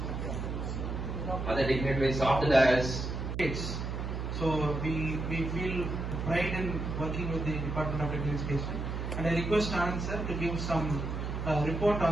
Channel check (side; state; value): right; noise; hum, 4 dB below the sound